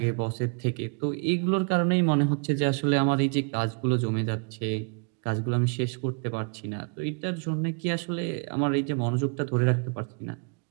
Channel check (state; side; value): quieter; left; 39.6 dB